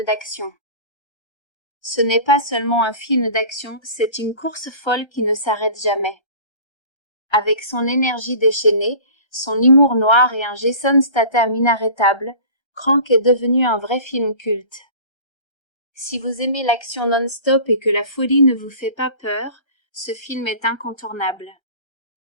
d'action. Ce n'est pas seulement un film d'action, c'est une course folle qui ne s'arrête jamais. Avec son énergie déchaînée, son humour noir et un Jason Statham inarrêtable, Crank est devenu un vrai film culte. Si vous aimez l'action non-stop et que la folie ne vous fait pas peur, ce film est incontournable.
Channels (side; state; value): right; late; 1.3 ms